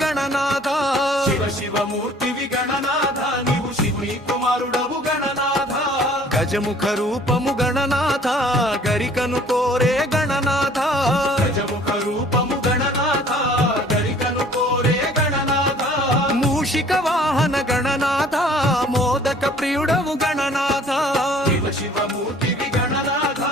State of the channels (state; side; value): normal; both; correlation 0.53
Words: గణనాథ శివమూర్తివి గణనాథ నీవు శివుని కుమారుడవు గణనాథ గజముఖ రూపము గణనాథ గరికను కోరే గణనాథ గజముఖ రూపము గణనాథ గరికను కోరే గణనాథ మూషిక వాహన గణనాథ మోదక ప్రియుడవు గణనాథ శివమూర్తివి గణనాథ